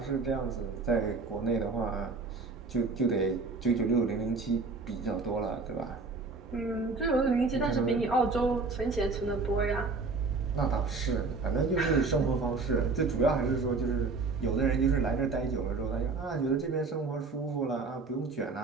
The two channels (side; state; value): left; quieter; 4.0 dB